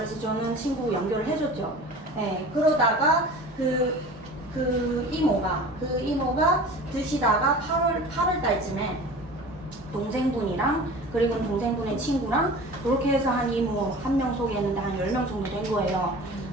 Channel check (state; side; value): normal; both; correlation 0.39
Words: 저는 친구 연결을 해줬죠. 네, 그러다가 그 이모가 드시다가 8월 달쯤에 동생분이랑, 그리고 동생분의 친구랑 그렇게 해서 한 이모 한 명 소개했는데 한 10명 정도 된 거예요.